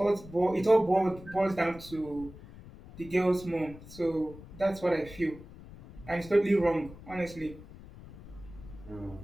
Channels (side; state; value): left; noise; rumble, 17 dB below the sound